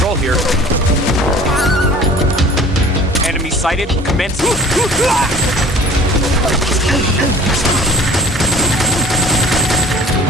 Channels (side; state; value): both; normal; correlation 0.46